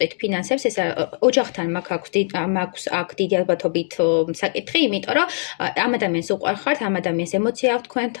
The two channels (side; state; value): right; silent; digital silence